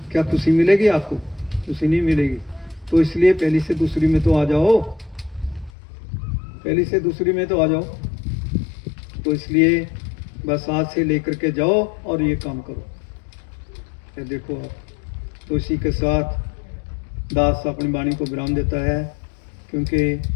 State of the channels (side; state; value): right; drops out; at 5.7 s